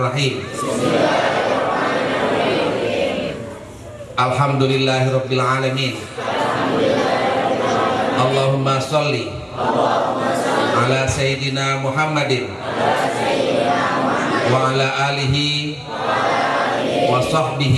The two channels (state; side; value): identical; both; correlation 1.00